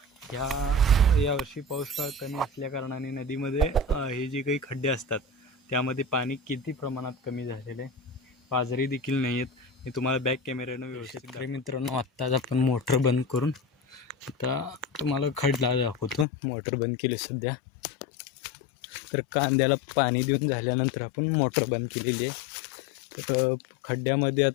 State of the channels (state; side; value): drops out; right; at 16.2 s